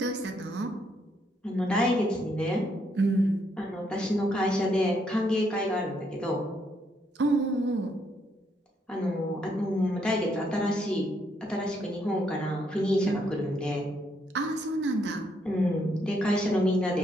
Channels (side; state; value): both; normal; correlation 0.74